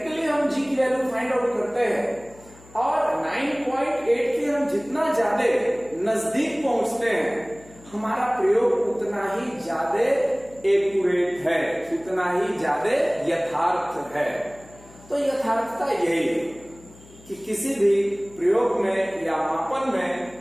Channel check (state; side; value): noise; left; hum, 23 dB below the sound